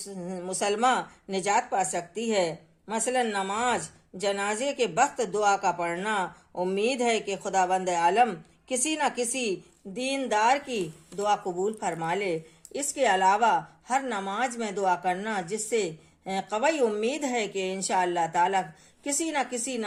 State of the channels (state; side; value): identical; both; correlation 1.00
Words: مسلمہ نجات پا سکتی ہے۔ مثلا نماز، جنازے کے وقت دعا کا پڑھنا۔ امید ہے کہ خداوند عالم کسی نہ کسی دیندار کی دعا قبول فرما لے۔ اس کے علاوہ ہر نماز میں دعا کرنا، جس سے قوی امید ہے کہ انشاءاللہ تعالی کسی نہ کسی